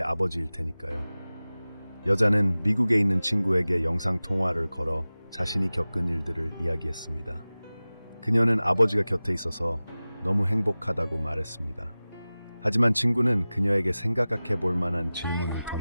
아버지일 테니까요. 여자는 미국에 있는 친구에게 영상통화를 걸어 자신이 겪은 일들을 이야기했습니다. 그녀는 아버지가 곁에 있어서 너무 행복하다고 말했습니다. 하지만 친구는 그녀에게 생각해 볼 만한 질문을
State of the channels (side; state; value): both; inverted; correlation -0.97